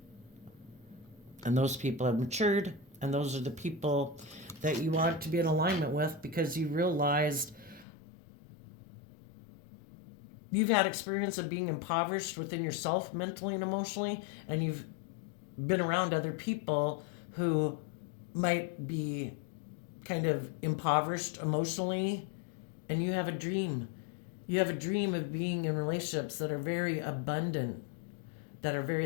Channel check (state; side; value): drops out; right; at 7.9 s